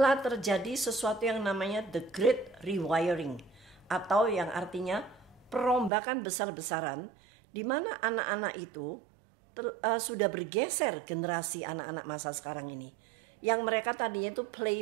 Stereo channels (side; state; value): left; drops out; at 5.9 s